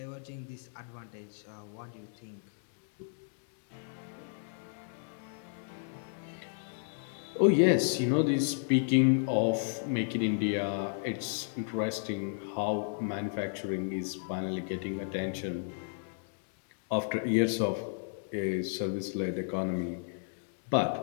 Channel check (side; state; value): right; silent; digital silence